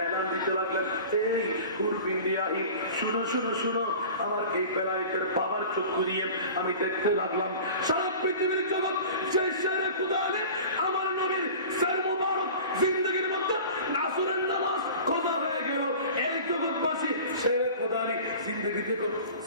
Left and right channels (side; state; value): both; inverted; correlation -0.39